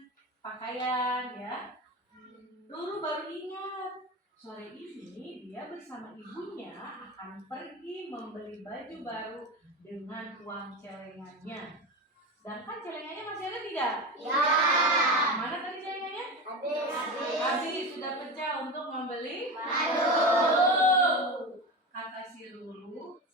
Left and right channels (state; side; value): normal; both; correlation 0.24